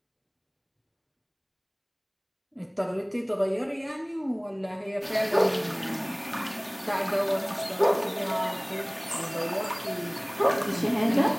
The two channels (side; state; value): both; identical; correlation 1.00